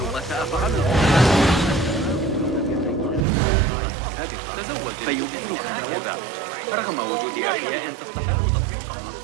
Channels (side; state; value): left; drops out; at 3.2 s